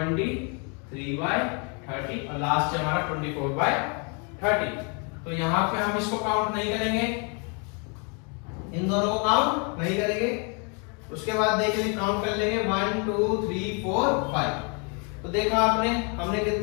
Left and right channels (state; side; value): quieter; right; 35.9 dB